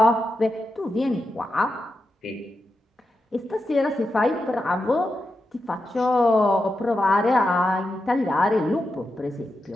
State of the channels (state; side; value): normal; both; correlation 0.88